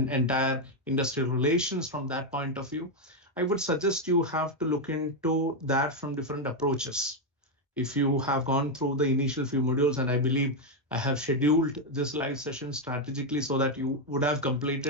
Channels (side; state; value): both; normal; correlation 0.03